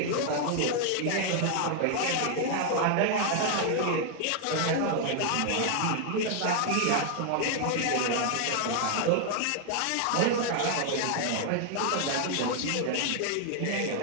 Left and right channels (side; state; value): both; different; correlation 0.00